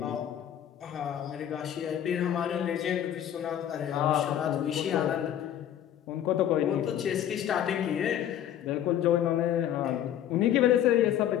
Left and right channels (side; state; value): right; quieter; 10.7 dB